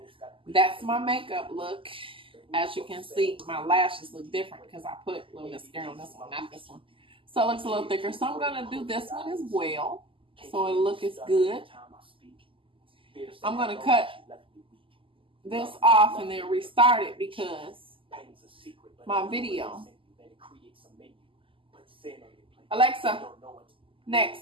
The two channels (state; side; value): late; left; 0.25 ms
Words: that's my makeup look. As you can see, my lashes look different because I put a little mascara on this one, not this one. So it looks a little thicker. So I'm going to do this one as well. So it'll look as good. I'm going to cut this off and then restart it because my video. Alexa,